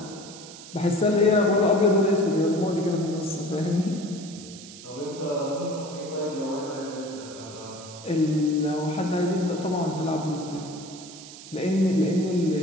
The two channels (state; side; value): noise; right; hiss, 16 dB below the sound